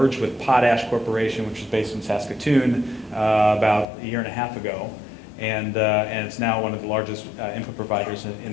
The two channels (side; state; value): right; drops out; at 3.9 s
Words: with Potash Corporation, which is based in Saskatoon, about a year and a half ago. And it's now one of the largest input providers in